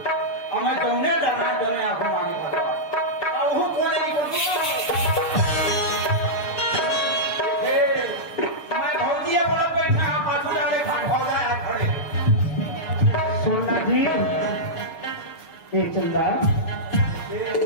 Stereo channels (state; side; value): late; right; 6.7 ms